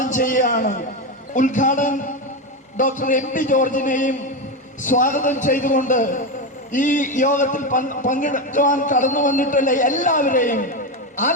ചെയ്യുകയാണ്. ഉദ്ഘാടകൻ ഡോക്ടർ MP ജോർജിനെയും സ്വാഗതം ചെയ്തുകൊണ്ട് ഈ യോഗത്തിൽ പങ്കെടുക്കുവാൻ കടന്നു വന്നിട്ടുള്ള എല്ലാവരെയും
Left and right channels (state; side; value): normal; both; correlation 0.13